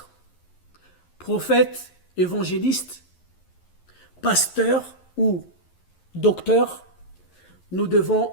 prophète, évangéliste, pasteur ou docteur, nous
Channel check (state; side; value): late; right; 11 ms